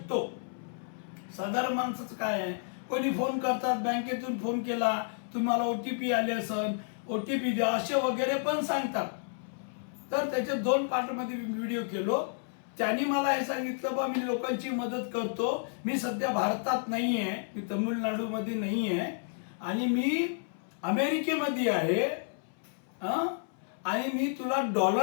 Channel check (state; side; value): silent; right; 57 dB below the other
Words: साधारण माणसाचं काय आहे, कोणी फोन करतात, बँकेतून फोन केला, तुम्हाला OTP आले असेल, OTP द्या असे वगैरे पण सांगतात. तर त्याचे 2 पार्टमध्ये व्हिडिओ केलो. त्यांनी मला हे सांगितलं, बा मी लोकांची मदत करतो, मी सध्या भारतात नाही आहे, मी तमिळनाडूमध्ये नाही आहे आणि मी अमेरिकेमध्ये आहे, आणि मी तुला